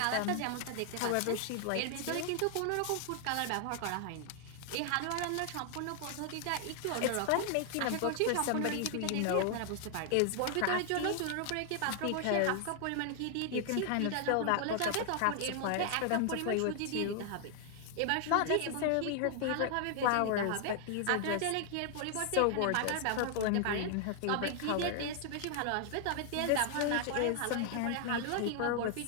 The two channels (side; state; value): both; different; correlation 0.00